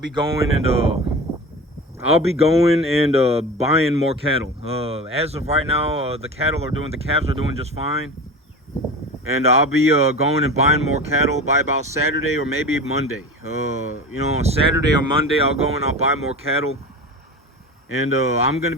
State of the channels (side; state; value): both; normal; correlation 0.31